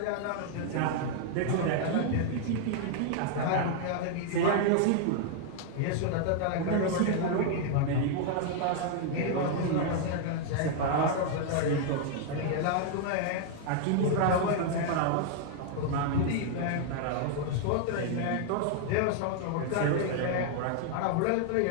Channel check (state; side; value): different; both; correlation 0.00